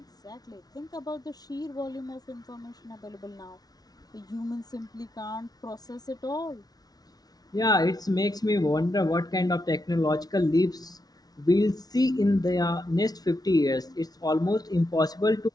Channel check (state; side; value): late; right; 0.19 ms